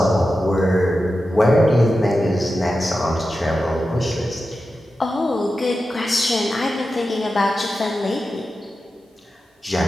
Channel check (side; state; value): both; normal; correlation 0.92